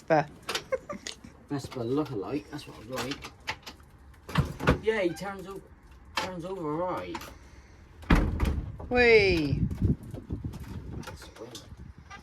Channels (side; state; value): both; identical; correlation 1.00